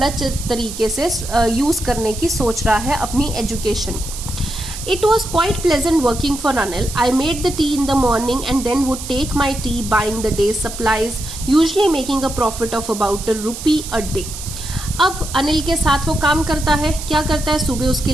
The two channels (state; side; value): noise; right; hiss, 10 dB below the sound